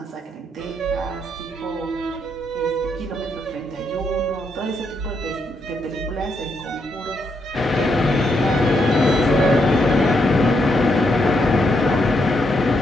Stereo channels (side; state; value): both; normal; correlation 0.78